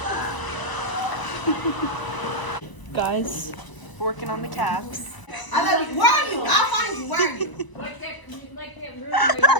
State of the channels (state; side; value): late; right; 1.0 ms